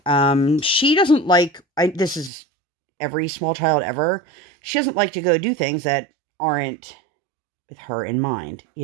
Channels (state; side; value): drops out; left; at 2.3 s